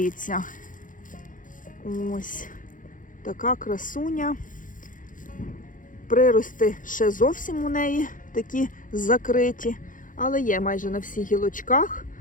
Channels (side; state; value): right; late; 0.38 ms